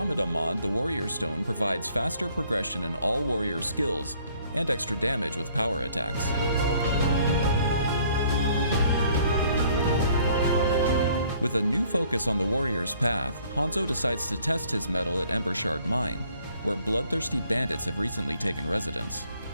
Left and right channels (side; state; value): both; inverted; correlation -0.61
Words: mod, the Warrior Stone provides faster progression in all warrior skills and extra damage with power attacks. With a new focus on the warrior's path, Hanzo decides to test his mettle at Embershard Mine, where bloodthirsty bandits have recently taken residence.